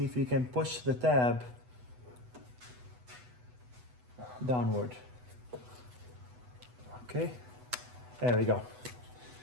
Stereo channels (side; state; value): left; late; 8.1 ms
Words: if you can push the tab downward. Okay, there we go.